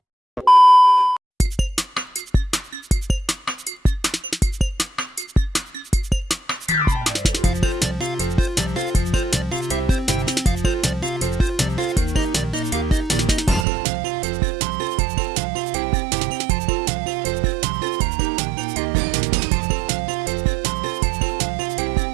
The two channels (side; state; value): left; drops out; at 13.7 s